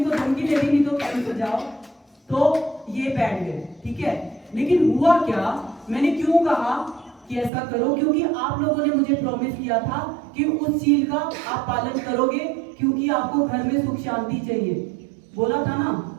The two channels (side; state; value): left; drops out; at 7.5 s